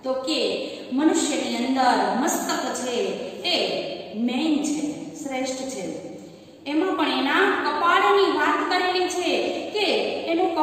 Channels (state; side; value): identical; both; correlation 1.00